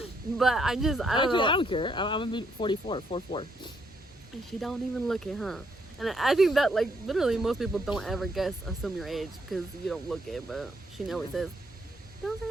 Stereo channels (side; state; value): both; normal; correlation 0.73